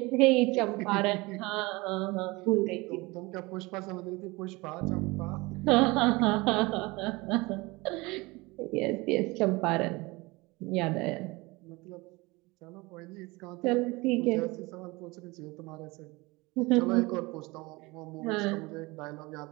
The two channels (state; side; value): quieter; left; 23.5 dB